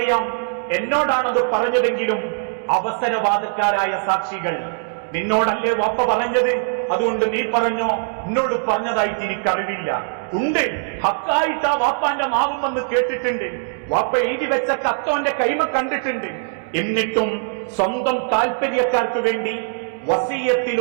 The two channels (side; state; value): left; silent; digital silence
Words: എന്നോടാണത് പറഞ്ഞതെങ്കിലും അവസരവാദക്കാരായ സാക്ഷികൾ, നിന്നോടല്ലേ വാപ്പ പറഞ്ഞത്, അതുകൊണ്ട് നീ പറഞ്ഞോ, എന്നോട് പറഞ്ഞതായിട്ട് എനിക്കറിവില്ല. ഉണ്ട്, ഹക്കായിട്ട് ആ വാപ്പാന്റെ നാവും വന്ന് കേട്ടിട്ടുണ്ട്, വാപ്പ എഴുതി വെച്ച കത്തോന്റെ കൈമ കണ്ടിട്ടുണ്ട്. എന്നിട്ടും സ്വന്തം താൽപര്യക്കാർക്ക് വേണ്ടി